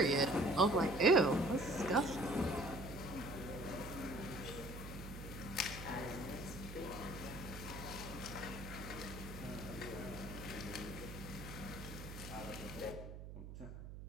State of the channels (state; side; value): noise; right; hum, 10 dB below the sound